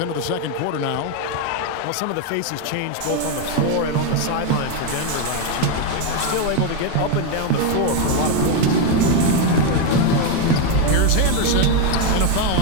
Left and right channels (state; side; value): different; both; correlation 0.01